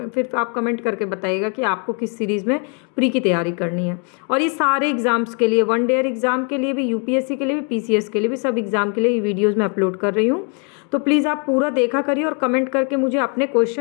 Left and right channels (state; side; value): quieter; right; 38.2 dB